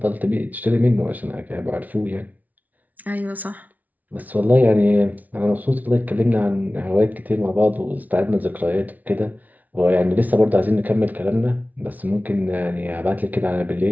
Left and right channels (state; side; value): late; left; 0.075 ms